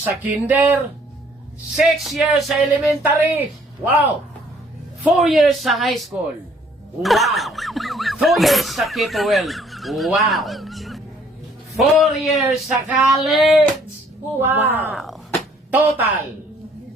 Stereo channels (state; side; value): normal; both; correlation 0.61